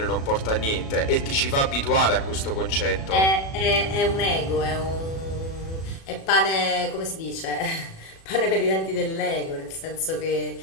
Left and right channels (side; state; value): right; late; 37 ms